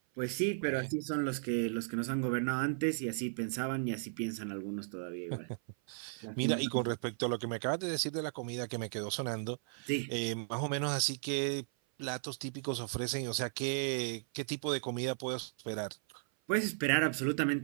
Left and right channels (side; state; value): left; silent; 54 dB below the other